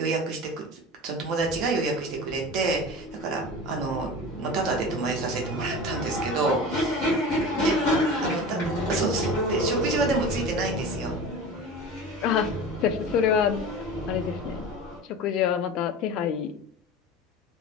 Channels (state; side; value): normal; both; correlation 0.33